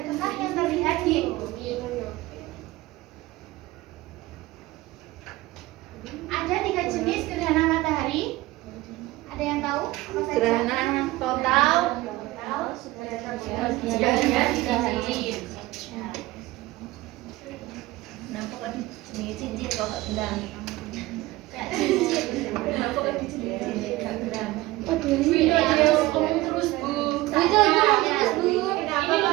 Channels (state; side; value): quieter; left; 18.6 dB